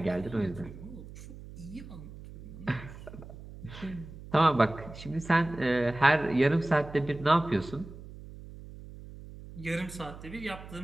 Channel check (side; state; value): right; noise; hum, 15 dB below the sound